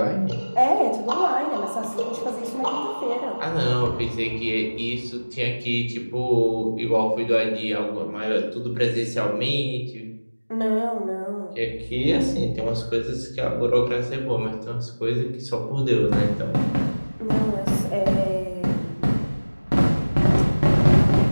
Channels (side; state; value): both; inverted; correlation -1.00